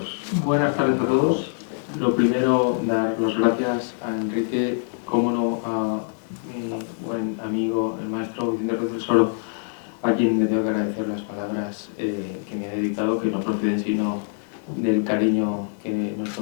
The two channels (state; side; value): silent; right; digital silence